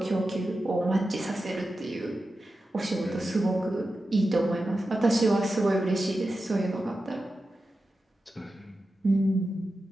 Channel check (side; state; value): both; normal; correlation 0.92